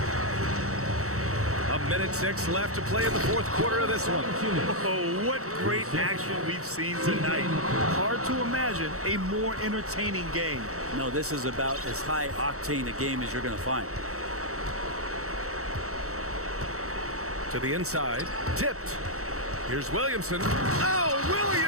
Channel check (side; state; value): left; late; 0.64 ms